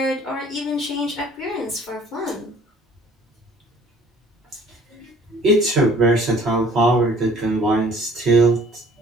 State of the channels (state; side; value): normal; both; correlation 0.55